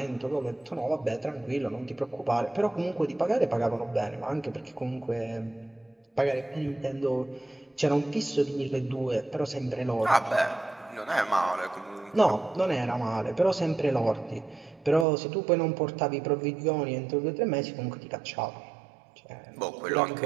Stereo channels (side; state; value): left; drops out; at 15.1 s